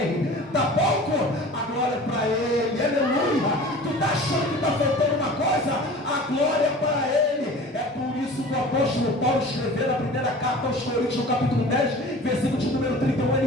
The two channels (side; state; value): both; normal; correlation 0.41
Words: Tá pouco? A glória é para ele, aleluia. Tu está achando que está faltando uma coisa? A glória é para ele. É por isso que o apóstolo Paulo escreveu na 1ª carta aos Coríntios, no capítulo 10, versículo de número 31,